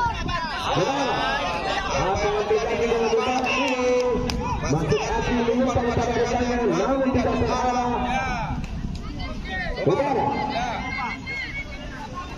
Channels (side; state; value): both; identical; correlation 1.00